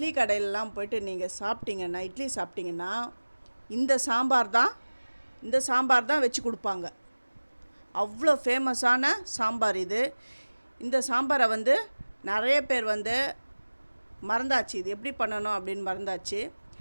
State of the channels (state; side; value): inverted; both; correlation -1.00